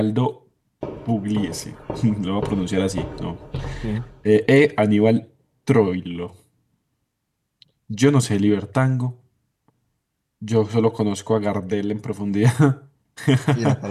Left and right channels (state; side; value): identical; both; correlation 1.00